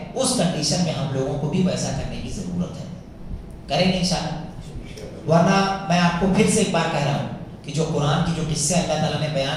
اس کنڈیشن میں ہم لوگوں کو بھی ویسا کرنے کی ضرورت ہے۔ کریں گے انشاءاللہ؟ ورنہ میں آپ کو پھر سے ایک بار کہہ رہا ہوں کہ جو قرآن کی جو قصے اللہ تعالیٰ نے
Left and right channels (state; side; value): identical; both; correlation 1.00